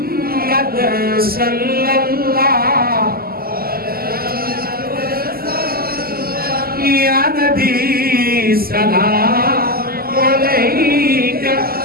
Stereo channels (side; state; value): left; late; 0.44 ms